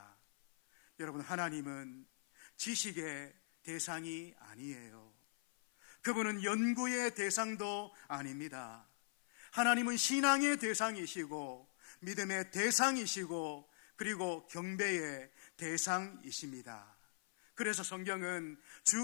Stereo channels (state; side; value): silent; right; 50 dB below the other